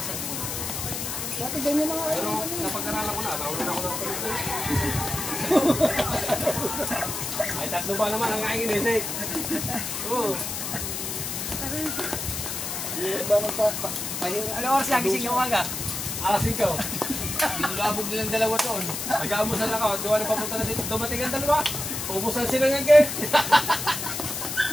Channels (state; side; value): noise; left; hiss, 4 dB below the sound